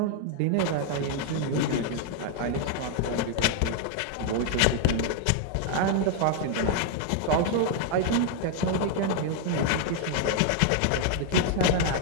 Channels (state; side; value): different; both; correlation 0.00